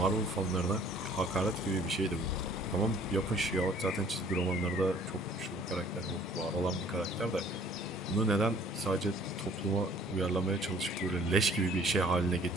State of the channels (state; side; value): normal; both; correlation 0.55